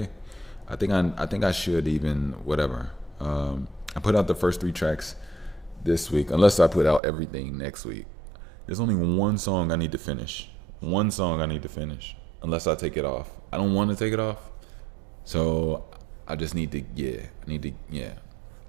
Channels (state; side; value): drops out; left; at 7.0 s